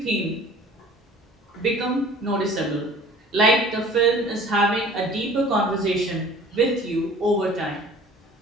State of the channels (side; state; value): both; normal; correlation 0.48